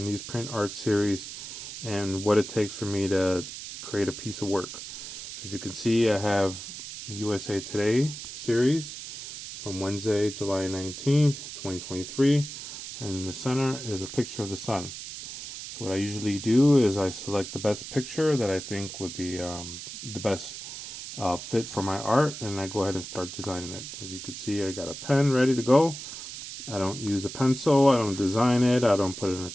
art series and what it takes for me to create a piece of work. As you can see, I have the USA Today series from Wednesday, July 19th, 2023, and in the center is a picture of the sun. So what I usually do is I select the best picture that I think would be the best fit for my art, and I go ahead and start designing it. As you can see, I got a pen ready to go. I don't use a pencil, I don't design it, I don't put it in a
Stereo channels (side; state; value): right; noise; hiss, 10 dB below the sound